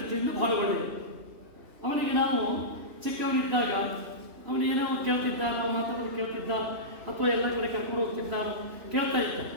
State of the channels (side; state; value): left; late; 3.0 ms